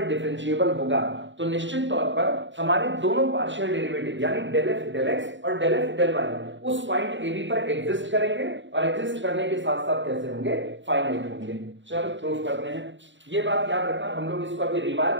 डिफरेंशिएबल होगा तो निश्चित तौर पर हमारे दोनों पार्शियल डेरिवेटिव यानी डेल एफ डेल एक्स और डेल एफ डेल वाई उस पॉइंट ए बी पर एग्जिस्ट करेंगे और एग्जिस्ट करने के साथ साथ कैसे होंगे, फाइनाइट होंगे। चलो प्रूफ करते हैं। ये बात याद रखना, हम लोग इसको अभी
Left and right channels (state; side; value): late; left; 0.54 ms